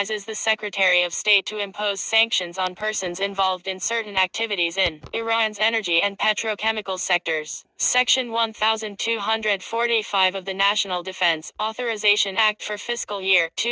the Secretary of State to impose sanctions on persons involved in certain activities in Iran's energy and petrochemical sectors. Section 1245 of the National Defense Authorization Act for fiscal year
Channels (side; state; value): both; identical; correlation 1.00